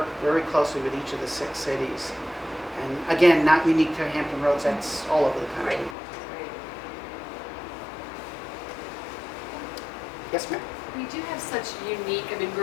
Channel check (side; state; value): right; drops out; at 6.0 s